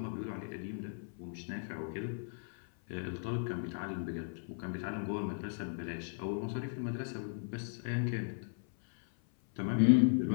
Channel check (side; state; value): right; silent; 53 dB below the other